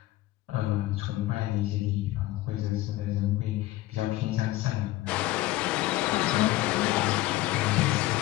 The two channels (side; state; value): right; quieter; 16.9 dB